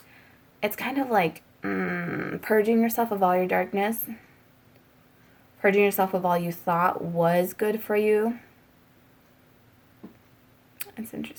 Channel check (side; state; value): both; identical; correlation 1.00